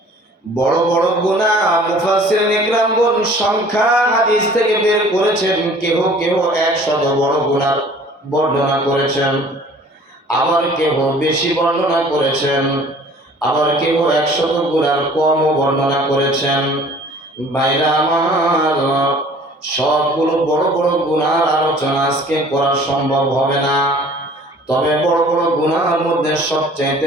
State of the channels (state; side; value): normal; both; correlation 0.50